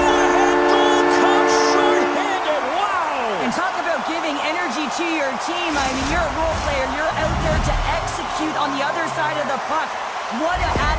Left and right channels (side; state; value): both; identical; correlation 1.00